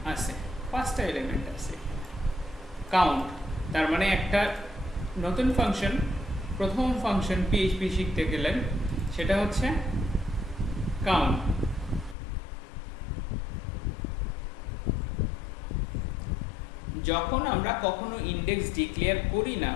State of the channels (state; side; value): drops out; right; at 12.2 s